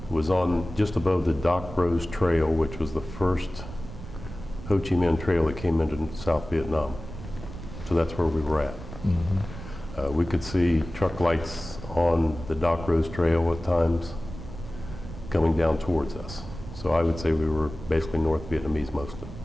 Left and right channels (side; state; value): right; noise; rumble, 12 dB below the sound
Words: was on just above the Doc Rose Trail, which was the first Ho Chi Minh Trail that came into South Vietnam. So that's where we were at. Mm-hmm. We could see truck lights on the Doc Rose Trail at times coming down towards us. So I would say we were basically North Vietnamese mostly.